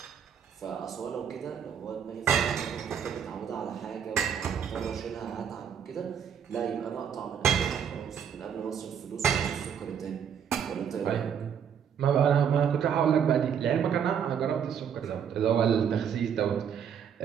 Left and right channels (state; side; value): quieter; left; 8.0 dB